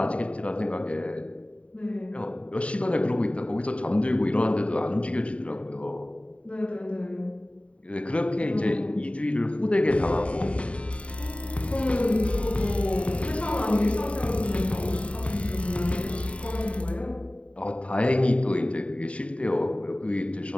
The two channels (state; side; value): late; right; 0.062 ms